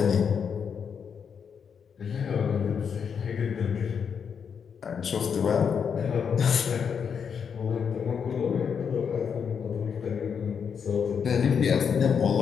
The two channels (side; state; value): right; quieter; 6.9 dB